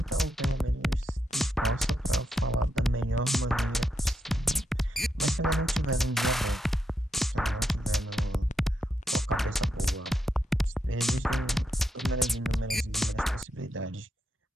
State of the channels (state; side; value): normal; both; correlation 0.83